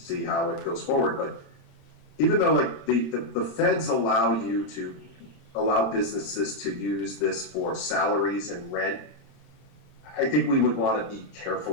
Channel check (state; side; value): late; right; 27 ms